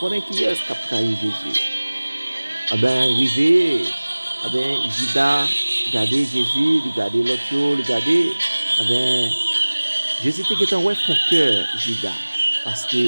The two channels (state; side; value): inverted; both; correlation -1.00